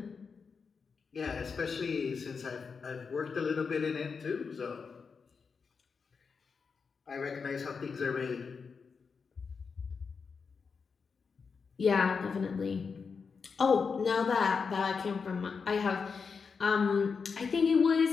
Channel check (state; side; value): quieter; right; 5.4 dB